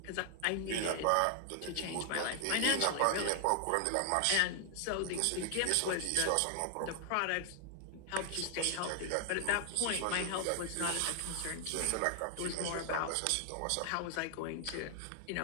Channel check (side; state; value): both; different; correlation 0.00